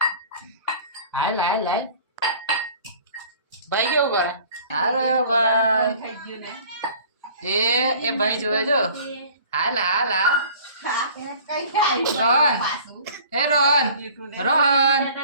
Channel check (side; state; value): both; inverted; correlation -0.48